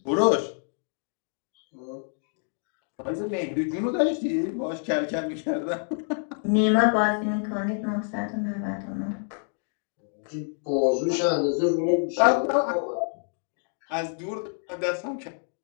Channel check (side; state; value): right; silent; 60 dB below the other